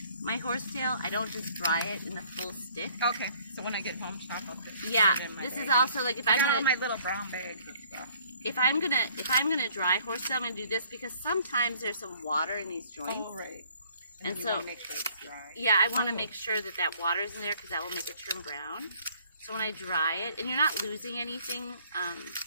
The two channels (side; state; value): both; inverted; correlation -0.59